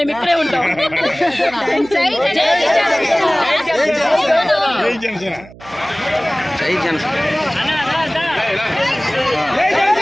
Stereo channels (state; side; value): noise; right; hum, 20 dB below the sound